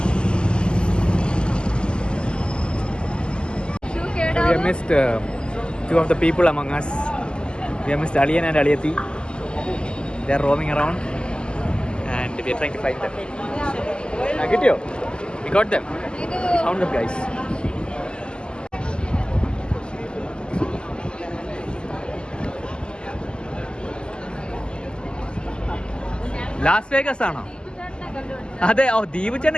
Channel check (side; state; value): right; late; 0.049 ms